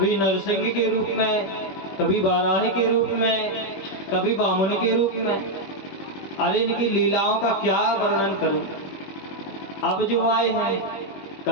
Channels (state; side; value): late; right; 21 ms